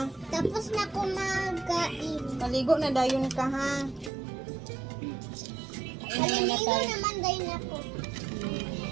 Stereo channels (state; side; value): drops out; left; at 4.1 s